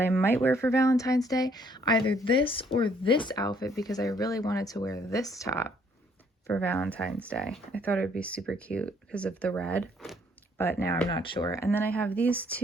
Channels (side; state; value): both; normal; correlation 0.65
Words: I might wear for Valentine's Day. Either this or this outfit, because I really wanted to wear this top for Valentine's Day. I thought it would be super cute because of the red, but now I'm not sure. And then I have these